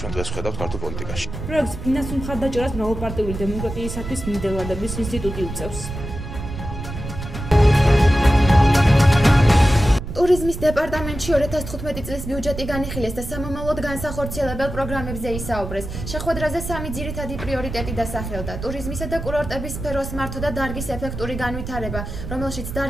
ჩვენ დღეს ვხედავთ ქართულ პოლიტიკაში. პროექტს ფინანსურ მხარდაჭერას მრავალპარტიული დემოკრატიისათვის ნიდერლანდების ინსტიტუტი უწევს. ტურიზმის დეპარტამენტში 2015 წლის ბიუჯეტი განიხილეს და სამომავლოდ განსახორციელებელ პროგრამებზე ისაუბრეს. შეხვედრაზე 3 ძირითადი პრიორიტეტი დასახელდა: ტურიზმისა და კურორტების სფეროს მართვა და დარგის ეფექტური განვითარება, რომელშიც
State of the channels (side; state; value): right; noise; rumble, 8 dB below the sound